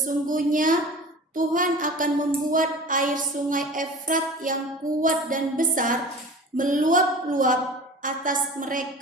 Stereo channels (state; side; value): normal; both; correlation 0.38